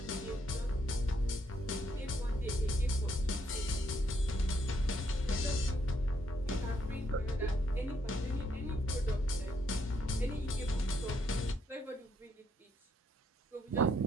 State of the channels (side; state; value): both; normal; correlation 0.74